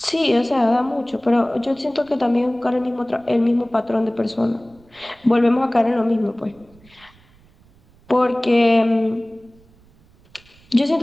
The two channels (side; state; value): right; noise; rumble, 29 dB below the sound